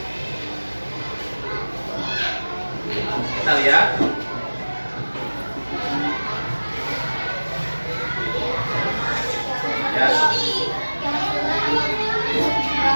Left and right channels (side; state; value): both; inverted; correlation -1.00